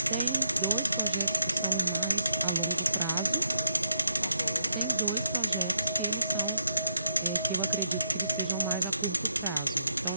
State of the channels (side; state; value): both; inverted; correlation -0.79